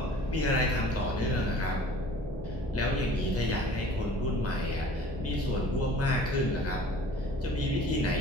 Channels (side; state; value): both; normal; correlation 0.48